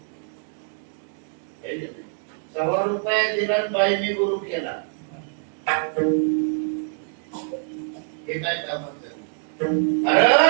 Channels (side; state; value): left; silent; digital silence